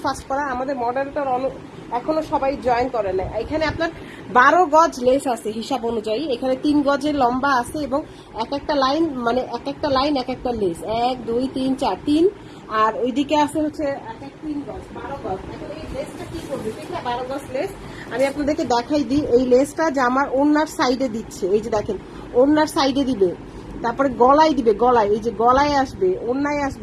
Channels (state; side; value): identical; both; correlation 1.00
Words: ফাস্ট করার। আমাদের মডারেটর এখনো সবাই জয়েন করে না। এখানে আপনার 12 গজ লেস আছে হিসাব অনুযায়ী, এখানে 3 গজের লম্বা আছে এবং এক একটা লাইন মানে এক একটা লাইন এক একটা লেস, 1 2 3 4 3, আর ওইদিকে আছে হচ্ছে এক এক 3 গজ, 12 গজ। এখন এই লেসটা কি করবে, ঠিক না? 12 গজ লেস আমি আপনাদেরকে দেখাই দিই। এই লেসটা যে আমার ওড়নার সাইডে দিচ্ছে, এই যে দেখেন ওড়নার সাইডে দিবে, তারপরে গলায় দিবে, গলায় এই যে গলায় আসবে, ওড়নায়